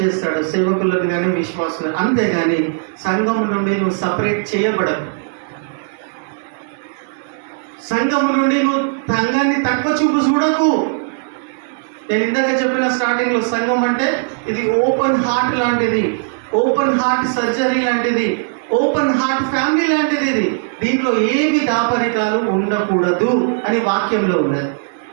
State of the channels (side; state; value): left; silent; digital silence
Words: సేవకులను కానీ విశ్వాసులు. అంతేగాని సంఘం నుండి నువ్వు సపరేట్ చేయబడవు. సంఘం నుండి నువ్వు సంఘాన్ని తక్కువ చూపు చూడకు. నేను ఇందాక చెప్పిన స్టార్టింగ్లో, సంఘం అంటే ఇది ఓపెన్ హార్ట్ లాంటిది, ఓపెన్ హార్ట్ సర్జరీ లాంటిది, ఓపెన్ హార్ట్ ఫ్యామిలీ లాంటిది. ఇది దీంట్లో ఏవి దాపరికాలు ఉండకూడదు అని వాక్యంలో ఉన్నది.